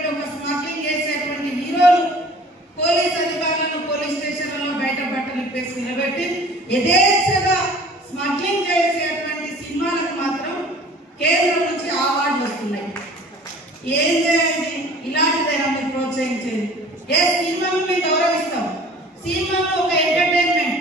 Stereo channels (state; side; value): normal; both; correlation 0.47